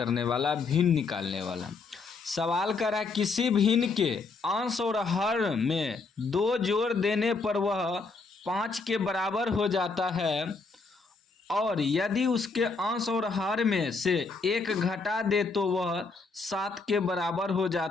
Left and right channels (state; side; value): quieter; right; 4.2 dB